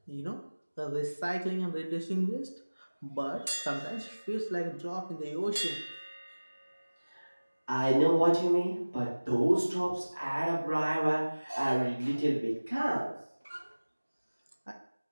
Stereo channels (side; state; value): both; inverted; correlation -1.00